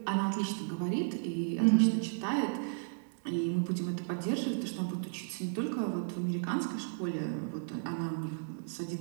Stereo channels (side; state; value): left; silent; digital silence